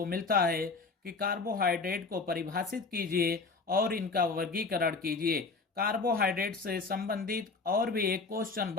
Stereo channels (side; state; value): right; quieter; 4.2 dB